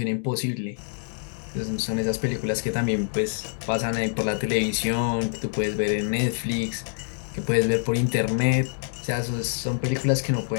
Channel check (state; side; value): silent; right; digital silence